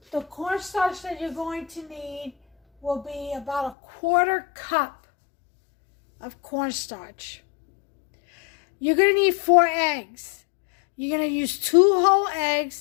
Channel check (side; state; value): right; drops out; at 3.8 s